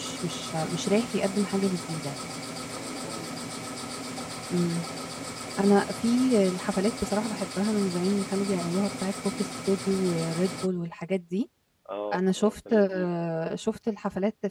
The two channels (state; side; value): identical; both; correlation 1.00